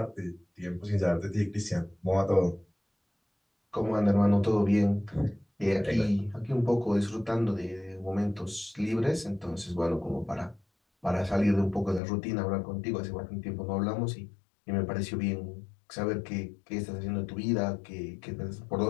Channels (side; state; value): right; drops out; at 12.0 s